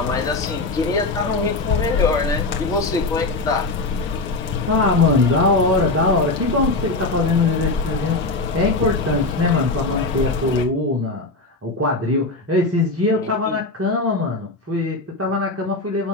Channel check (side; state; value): right; quieter; 3.2 dB